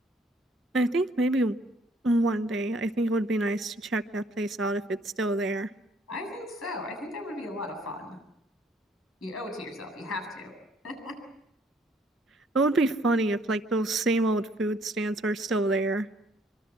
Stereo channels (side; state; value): both; normal; correlation 0.63